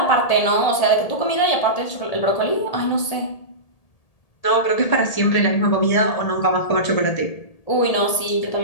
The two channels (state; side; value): late; right; 1.8 ms